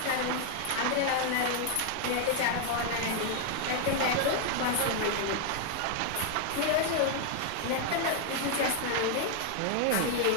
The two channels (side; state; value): both; different; correlation 0.00